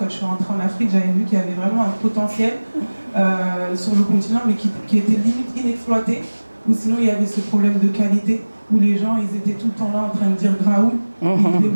je suis rentrée en Afrique, j'avais vu qu'il y avait vraiment un potentiel sur le continent mais qui était limite inexploité, ou sinon il y avait ce problème de qualité où les gens ils étaient tout le temps là en train de dire Graoul,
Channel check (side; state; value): both; inverted; correlation -1.00